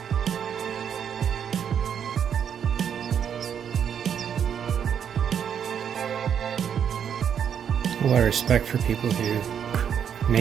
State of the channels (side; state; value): left; quieter; 8.3 dB